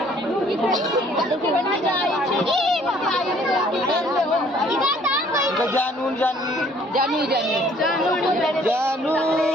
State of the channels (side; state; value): both; normal; correlation 0.59